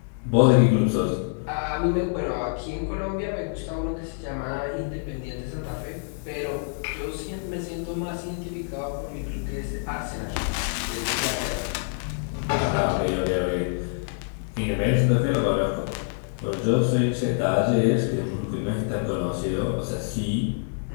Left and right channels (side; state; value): right; silent; digital silence